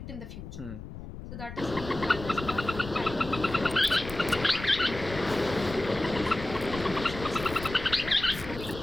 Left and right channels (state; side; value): noise; left; rumble, 11 dB below the sound